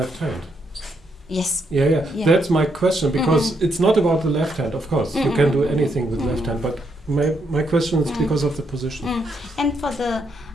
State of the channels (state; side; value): normal; both; correlation 0.77